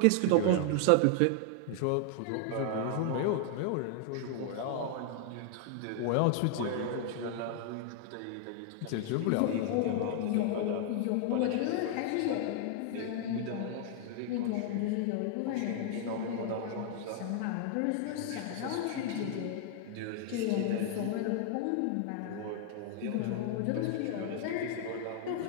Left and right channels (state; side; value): different; both; correlation -0.01